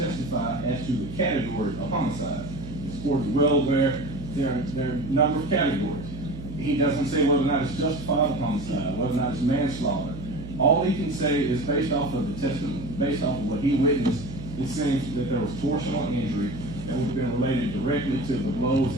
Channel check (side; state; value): right; noise; hum, 11 dB below the sound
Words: as to the category of homicide. This court is well aware there are a number of categories. He doesn't say whether or not it's justified homicide, whether or not it's manslaughter. All he can say is based off of the testimony, based off of what he witnessed, it seems that there was torsional injury that would have been related directly to the blows